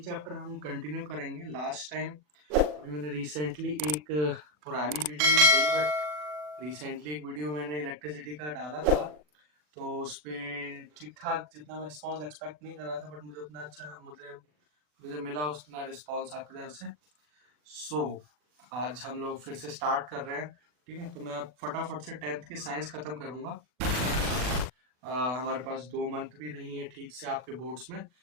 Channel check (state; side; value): late; left; 40 ms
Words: हम कंटिन्यू करेंगे। लास्ट टाइम अभी मैंने रिसेंटली एक पुरानी वीडियो नहीं सही बट रिसेंटली एक वीडियो मैंने इलेक्ट्रिसिटी का डाला था, तो उस पर ठीक ठाक जितना मैं रिस्पॉन्स एक्सपेक्ट नहीं कर रहा था बट मुझे उतना अच्छा मुझे मुझे मिला उतना रिस्पॉन्स आपकी तरफ से। सो आज हम लोग फिर से स्टार्ट कर रहे हैं। ठीक है, तो मैं अब फटाफट से 10th की साइंस खत्म करूंगा। हमारे पास 2 मंथ भी नहीं है ठीक से आपके बोर्ड्स में।